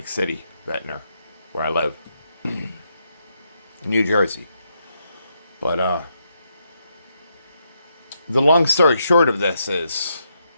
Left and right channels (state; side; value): inverted; both; correlation -0.79